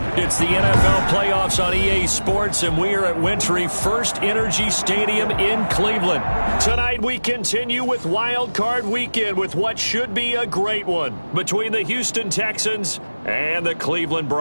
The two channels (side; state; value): both; inverted; correlation -1.00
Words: It's the NFL playoffs on EA Sports, and we are at Wentry First Energy Stadium in Cleveland. Tonight we continue with Wild Card Weekend with what should be a great one between the Houston Texans and the Cleveland